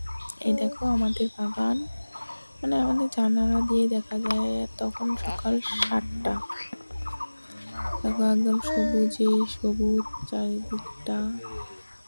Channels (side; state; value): both; inverted; correlation -1.00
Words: এই দেখো আমাদের বাগান, মানে আমাদের জানালা দিয়ে দেখা যায়। তখন সকাল 7টা। দেখো একদম সবুজে সবুজ চারিদিকটা।